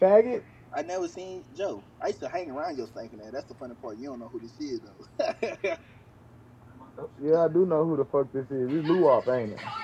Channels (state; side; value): identical; both; correlation 1.00